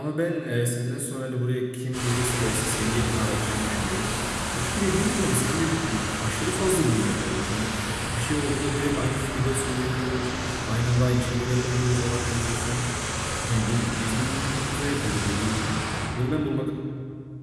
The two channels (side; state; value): both; identical; correlation 1.00